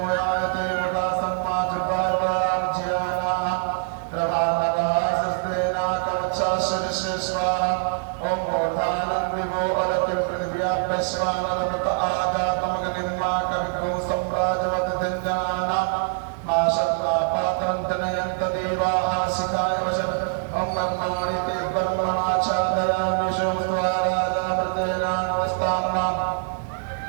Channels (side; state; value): left; silent; 56 dB below the other